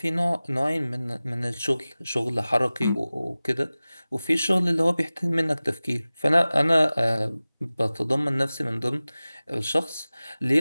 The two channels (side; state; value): both; inverted; correlation -0.97